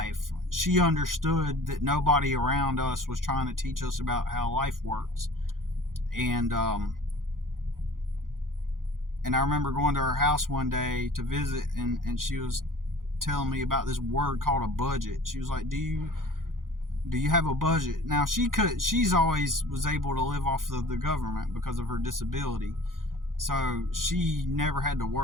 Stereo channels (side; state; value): left; late; 0.90 ms